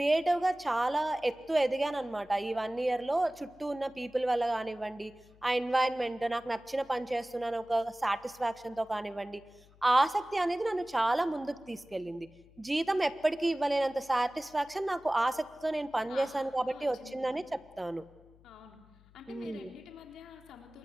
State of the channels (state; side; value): noise; left; hum, 26 dB below the sound